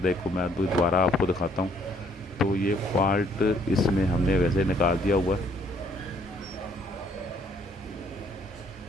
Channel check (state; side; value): normal; both; correlation 0.64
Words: है को मैं दोबारा आपको दिखाता हूँ। तो ये फॉल्ट इसमें हमने वैसे निकाल दिया हुआ है।